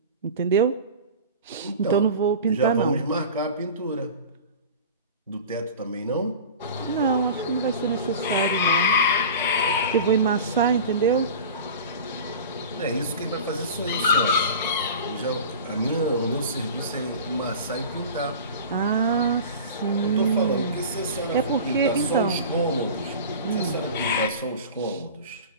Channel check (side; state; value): both; inverted; correlation -0.35